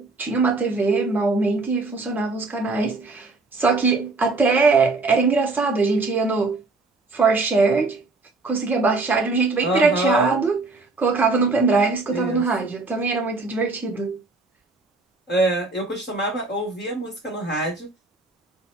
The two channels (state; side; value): quieter; left; 3.5 dB